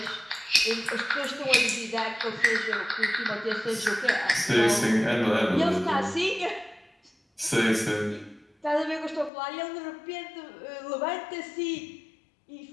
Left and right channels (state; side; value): drops out; right; at 9.3 s